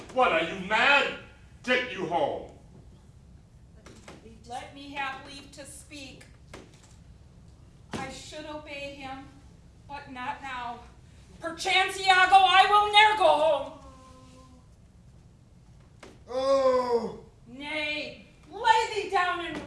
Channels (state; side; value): identical; both; correlation 1.00